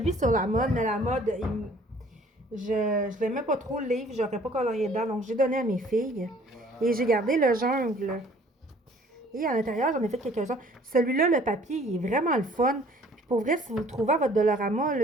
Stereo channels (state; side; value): normal; both; correlation 0.55